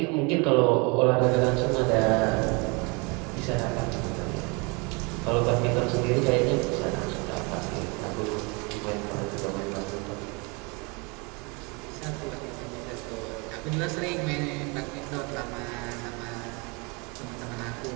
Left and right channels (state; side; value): quieter; left; 29.8 dB